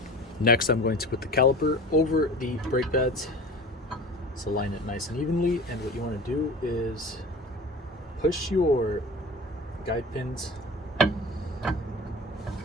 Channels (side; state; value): both; normal; correlation 0.37